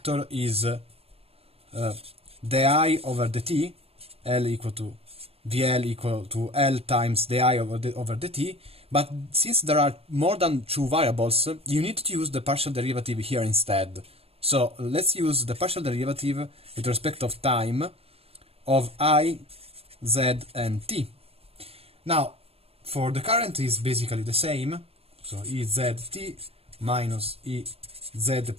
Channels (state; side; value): late; left; 0.28 ms